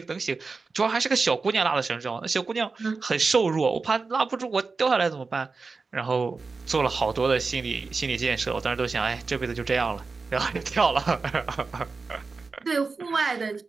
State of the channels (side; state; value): left; quieter; 4.3 dB